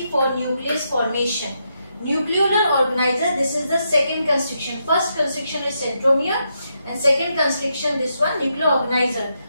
for nucleus formation. Nucleolar organizer, this is the second constriction. First constriction is centromere, and second constriction, this one, nuclear organizer.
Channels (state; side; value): inverted; both; correlation -0.81